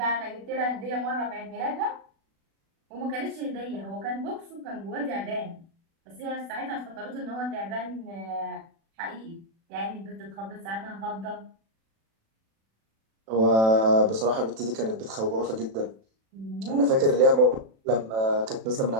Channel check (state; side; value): late; left; 36 ms